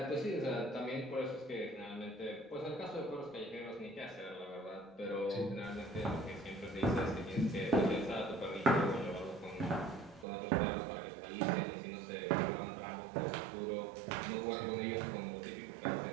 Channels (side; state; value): left; drops out; at 10.2 s